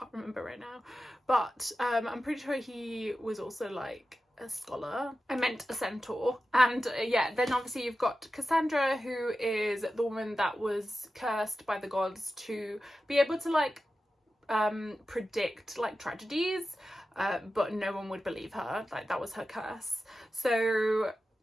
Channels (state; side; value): normal; both; correlation 0.93